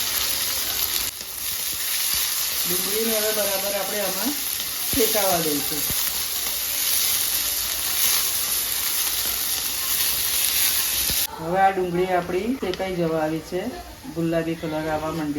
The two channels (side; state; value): both; identical; correlation 1.00